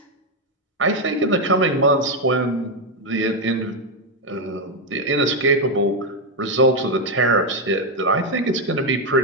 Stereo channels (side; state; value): both; normal; correlation 0.05